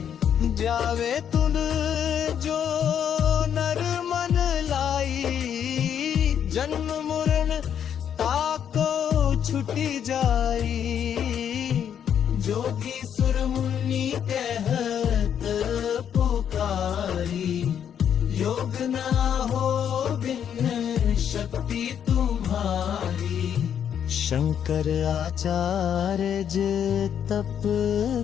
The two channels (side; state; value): right; quieter; 8.8 dB